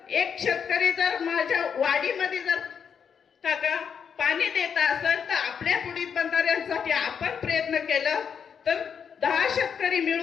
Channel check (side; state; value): right; quieter; 7.1 dB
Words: एक शेतकरी जर माझ्या वाडीमध्ये जर काका पाणी देत असेल तर आपल्या पुढील बंधाऱ्यांसाठी आपण प्रयत्न केलं तर 10 शेतकरी